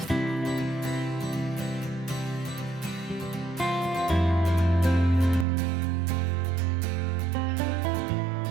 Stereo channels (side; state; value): left; drops out; at 5.5 s